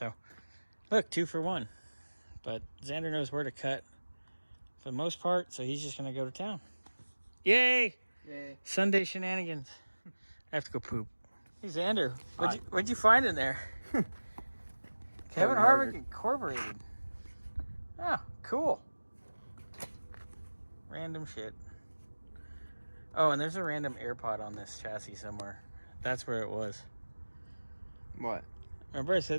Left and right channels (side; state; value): both; inverted; correlation -1.00